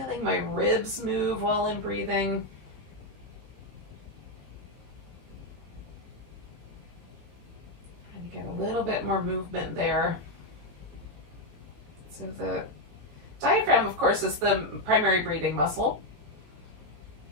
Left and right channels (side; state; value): left; late; 18 ms